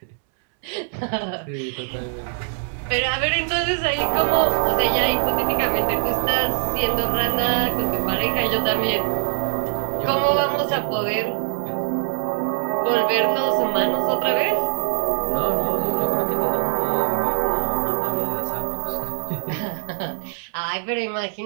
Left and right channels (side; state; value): left; silent; 64 dB below the other